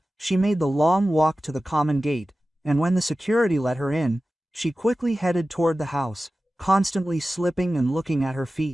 she made the long walk to the common gate, and when the security let her in, she quickly headed toward the house, constantly slipping and looking at her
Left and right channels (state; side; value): normal; both; correlation 0.95